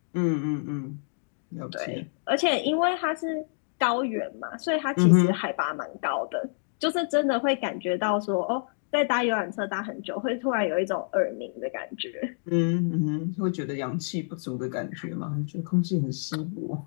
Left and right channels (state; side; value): silent; right; digital silence